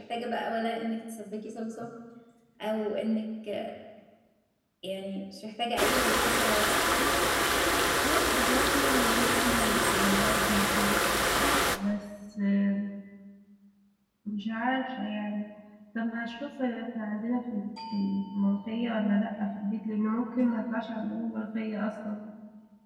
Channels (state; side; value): identical; both; correlation 1.00